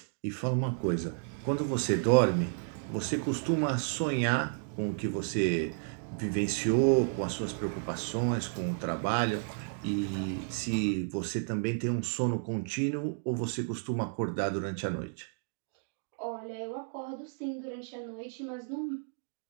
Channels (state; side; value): silent; left; digital silence